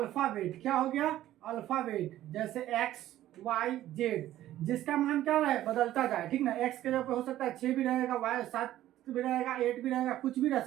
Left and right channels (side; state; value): left; quieter; 13.6 dB